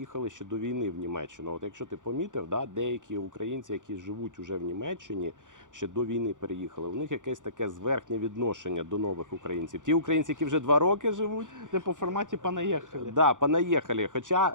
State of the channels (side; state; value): left; late; 0.87 ms